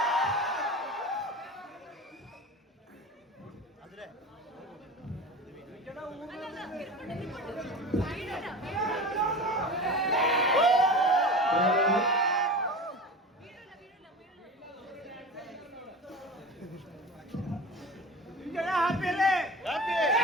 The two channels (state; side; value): normal; both; correlation 0.32